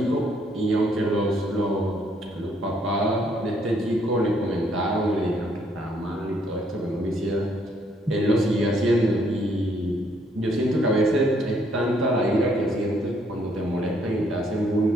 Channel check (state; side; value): normal; both; correlation 0.68